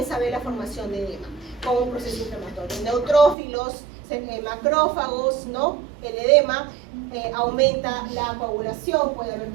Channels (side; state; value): left; drops out; at 3.4 s